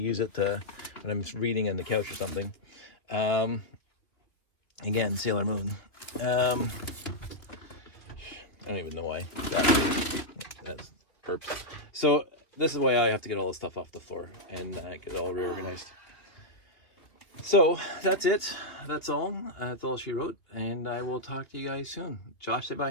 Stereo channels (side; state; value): right; late; 2.5 ms